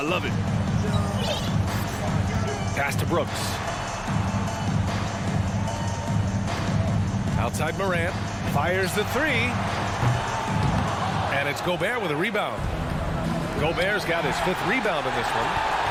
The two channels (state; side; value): identical; both; correlation 1.00